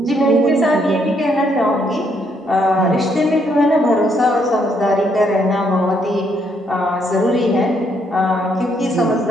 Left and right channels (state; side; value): normal; both; correlation 0.72